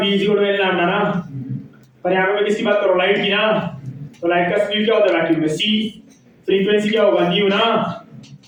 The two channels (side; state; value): both; identical; correlation 1.00